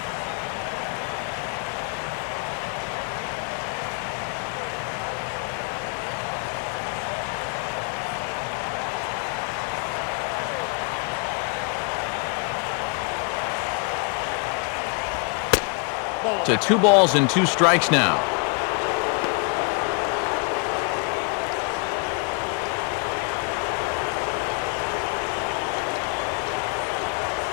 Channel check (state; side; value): quieter; right; 36.3 dB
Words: To 2 balls and 2 strikes now.